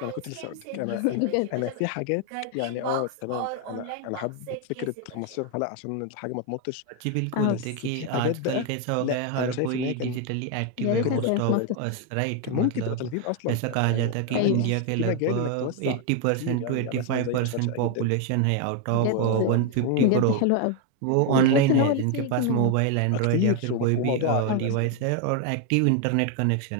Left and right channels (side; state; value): both; different; correlation 0.01